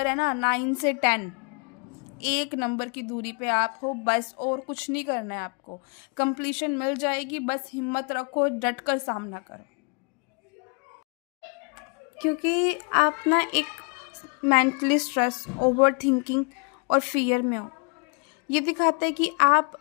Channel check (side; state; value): right; quieter; 35.0 dB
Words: है ना, 9 से 10, एक नंबर की दूरी पे आप हो बस, और कुछ नहीं करना है आपको। कंप्लीशन मिल जाएगी, बस हिम्मत रखो, डट कर सामना करो, क्योंकि आप ना एक मेंटली स्ट्रेस, ओवर थिंकिंग और फियर में हो। ये दिखाता है कि